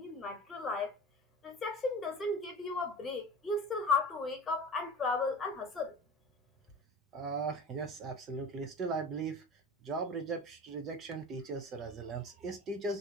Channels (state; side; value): normal; both; correlation 0.34